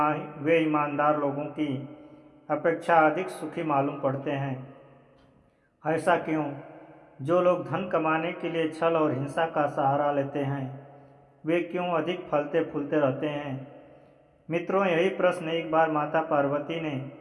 ईमानदार लोगों की अपेक्षा अधिक सुखी मालूम पड़ते हैं। ऐसा क्यों? जो लोग धन कमाने के लिए छल और हिंसा का सहारा लेते हैं, वे क्यों अधिक फलते फूलते रहते हैं? मित्रों, यही प्रश्न एक बार माता पार्वती ने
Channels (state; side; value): identical; both; correlation 1.00